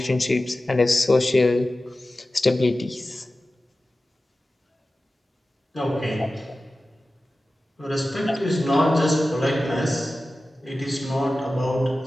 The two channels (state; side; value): normal; both; correlation 0.95